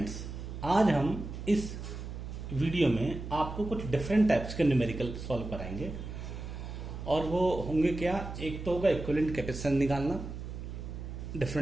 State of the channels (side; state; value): right; noise; hum, 8 dB below the sound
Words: आज हम इस वीडियो में आपको कुछ डिफरेंट टाइप्स के न्यूमेरिकल सॉल्व कराएंगे और वो होंगे क्या। एक तो होगा इक्विवेलेंट कैपेसिटेंस निकालना,